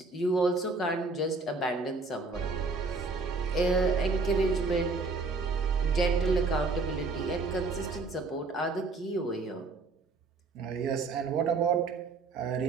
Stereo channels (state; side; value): quieter; left; 3.9 dB